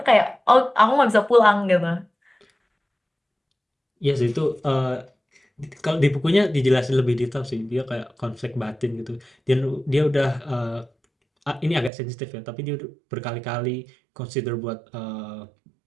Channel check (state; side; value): drops out; left; at 11.9 s